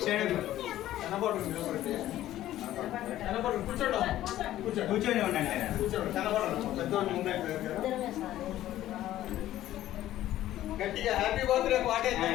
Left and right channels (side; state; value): right; quieter; 13.7 dB